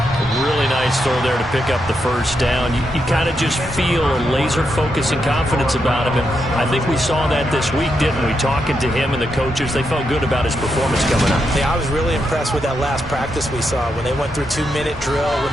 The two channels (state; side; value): normal; both; correlation 0.83